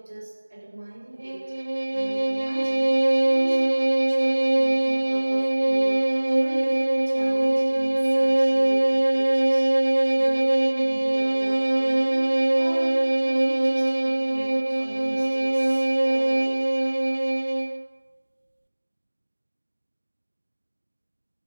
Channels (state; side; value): inverted; both; correlation -1.00